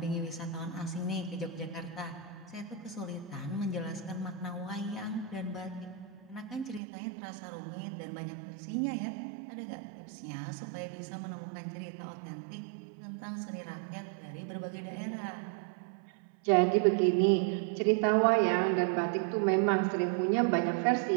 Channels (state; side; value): drops out; left; at 6.8 s